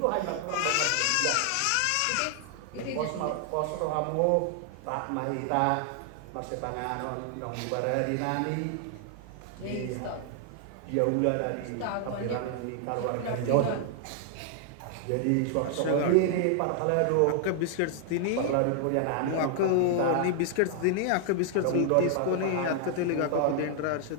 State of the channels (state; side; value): different; both; correlation 0.00